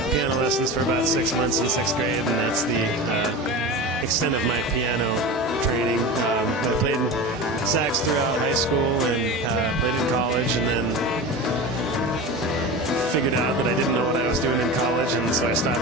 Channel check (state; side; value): normal; both; correlation 0.28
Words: piano lessons for about 6 months in 6th grade, and that's the extent of my piano training. I played sax throughout high school and played in college, and then figured out that I didn't know what I was doing in college, and so I